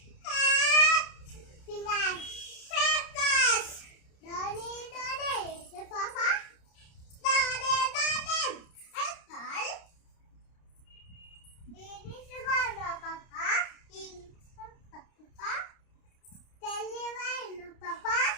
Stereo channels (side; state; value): right; late; 30 ms